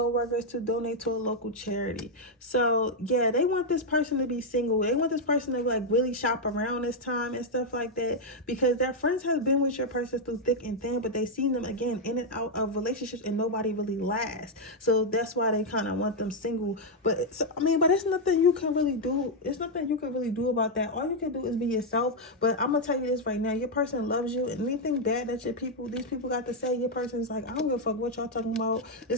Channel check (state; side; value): normal; both; correlation 0.00